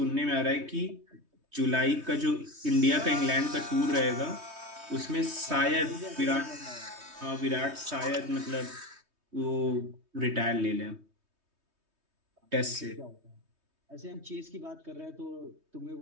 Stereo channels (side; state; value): left; late; 3.2 ms